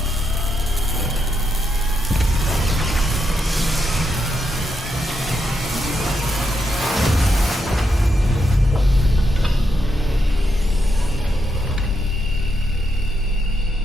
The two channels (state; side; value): normal; both; correlation 0.82